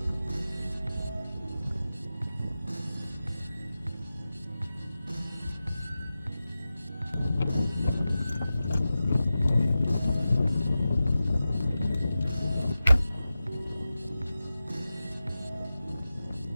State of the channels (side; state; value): both; inverted; correlation -0.94